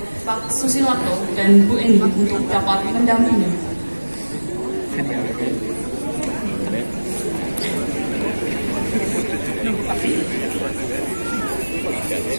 Pak Susilato, dan Bu Eni untuk dapat mendampingi.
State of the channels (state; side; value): inverted; both; correlation -1.00